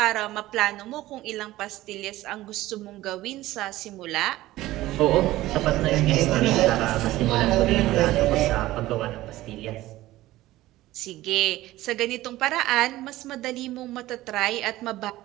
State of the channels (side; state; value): left; quieter; 16.5 dB